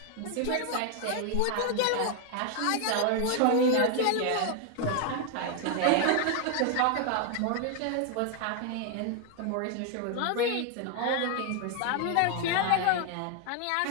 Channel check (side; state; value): both; different; correlation 0.00